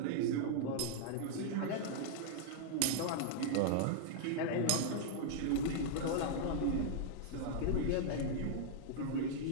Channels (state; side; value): different; both; correlation -0.01